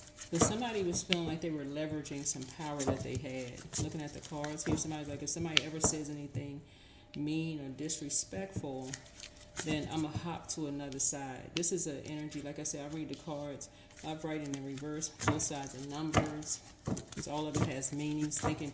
If somebody was feeling like they were leveraging some power that they had, looking at the cards here, somebody's like, if somebody ever says anything mean or disrespectful, then I'm going to hop to another side. This is an energy, like I said, I read the cards, I write in the reverse, both sides of numbers, because all of it has meanings, thinking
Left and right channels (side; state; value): both; identical; correlation 1.00